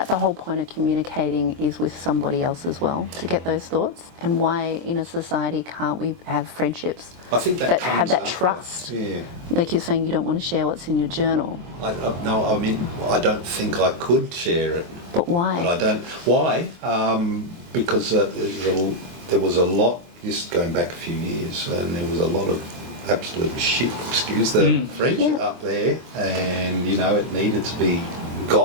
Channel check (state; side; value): late; left; 23 ms